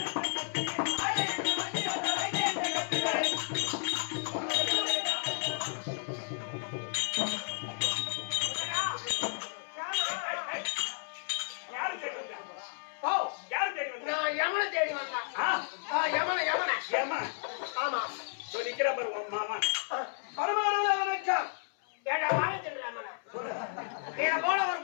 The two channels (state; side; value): silent; right; 56 dB below the other